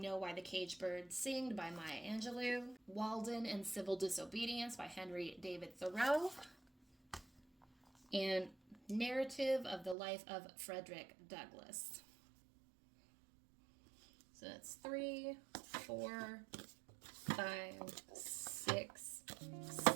Why the Caged Bird Sing by Maya Angelou. Walden and Civil Disobedience by Henry David Thoreau. And Narrative of the Life of Frederick Douglass. So that's 3, 4, 5, 6,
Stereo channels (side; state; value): left; drops out; at 10.0 s